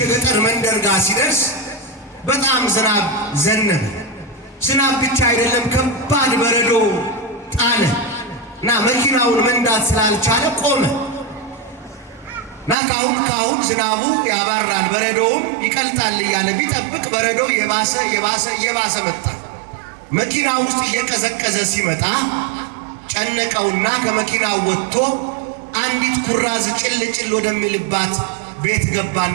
የገጠር መንደር ጋር ሲደርስ በጣም ዝናብ ዘነበ። ዝናብ ብቻ አይደለም፣ ከባድ በረዶ ጣለ እና መኪናውን መንዳት ስላልቻለ ቆመ እና ካሁን ዝናቡ ያባራል፣ በረዶውም ይቀልጣል እያለ ቢጠብቅ በረዶ የባሰ መጣ። መኪና ውስጥ እየቀዘቀዘ ሲመጣ ጨነቀውና ከመኪናው ወጥቶ አንዲት ኩራዝ ጭል ወደሚልባት ቤት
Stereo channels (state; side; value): drops out; left; at 12.8 s